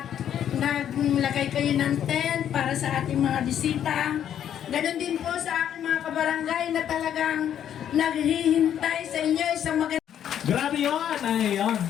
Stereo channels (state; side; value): quieter; right; 9.8 dB